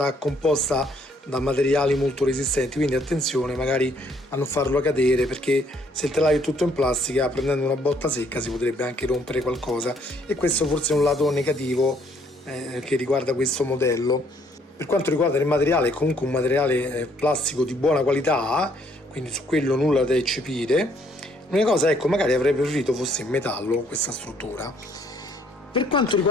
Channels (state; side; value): normal; both; correlation 0.66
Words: composta da materiali molto resistenti, quindi attenzione magari a non farlo cadere, perché se il telaio è tutto in plastica prendendo una botta secca si potrebbe anche rompere qualcosa, e questo forse è un lato negativo che riguarda questo modello. Per quanto riguarda il materiale, è comunque un materiale plastico di buona qualità, quindi su quello nulla da eccepire. L'unica cosa, ecco, magari avrei preferito fosse in metallo questa struttura. Per quanto